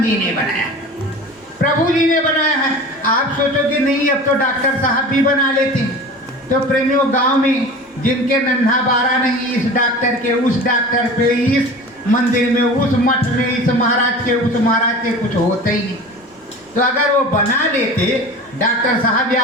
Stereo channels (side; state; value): both; normal; correlation 0.36